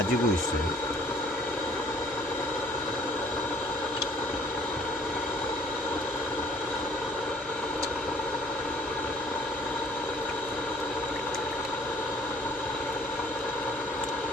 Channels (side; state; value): both; normal; correlation 0.57